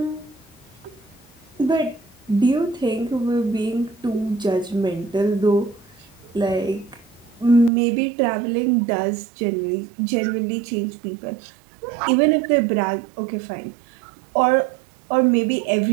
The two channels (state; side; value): drops out; left; at 7.7 s